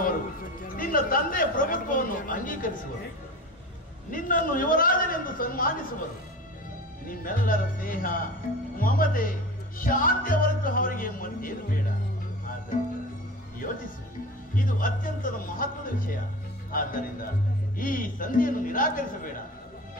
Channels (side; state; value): both; normal; correlation 0.33